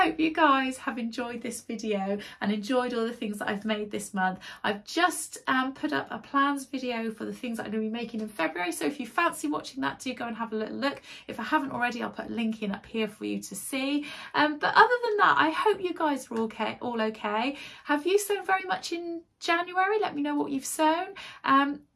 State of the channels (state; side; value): identical; both; correlation 1.00